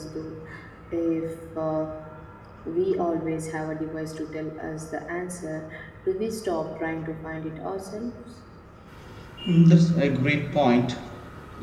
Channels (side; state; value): both; identical; correlation 1.00